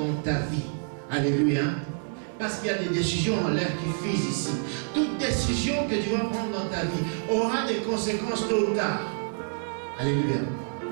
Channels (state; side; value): silent; left; 60 dB below the other